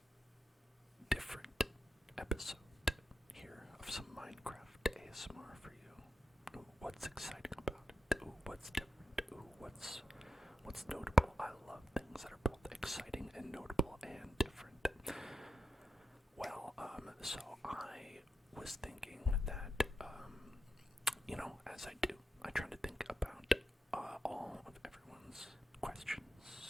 different episode here of some Minecraft ASMR for you. Ooh, what's exciting about it? Ooh, what's different? Ooh, what's notable? I love things that are both exciting and notable and different. Well, so I was thinking that, as I do, I try to think about all of everyone's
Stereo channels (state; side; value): normal; both; correlation 0.88